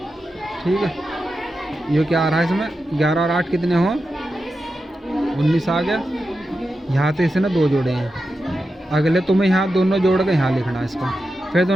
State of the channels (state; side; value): normal; both; correlation 0.90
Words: ठीक है, ये क्या आ रहा है इसमें? 11 और 8 कितने हो? 19 आ गया। यहाँ से इसने 2 जोड़े हैं, अगले तुम्हें यहाँ दोनों जोड़ के यहाँ लिखना है इसका, फिर